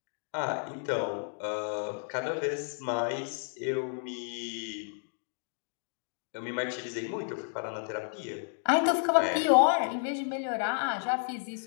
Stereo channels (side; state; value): right; silent; 57 dB below the other